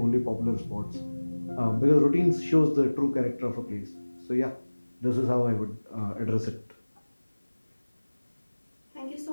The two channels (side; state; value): both; inverted; correlation -1.00